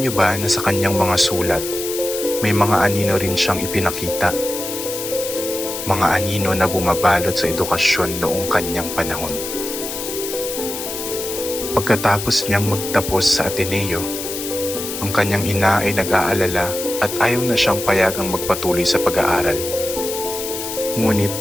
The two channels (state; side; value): noise; left; hiss, 6 dB below the sound